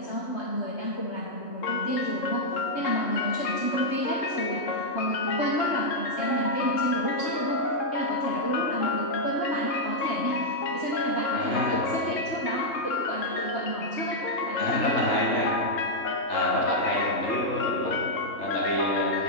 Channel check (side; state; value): right; late; 3.2 ms